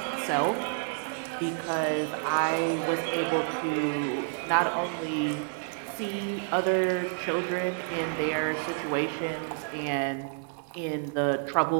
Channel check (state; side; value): silent; left; 58 dB below the other